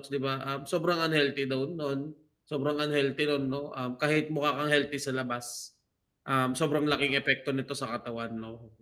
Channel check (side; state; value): both; identical; correlation 1.00